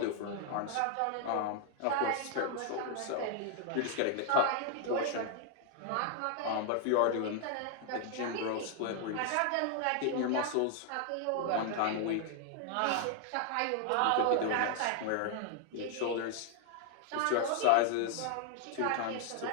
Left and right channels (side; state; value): both; different; correlation 0.00